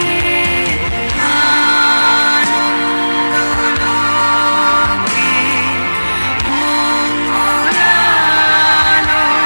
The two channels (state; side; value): inverted; both; correlation -1.00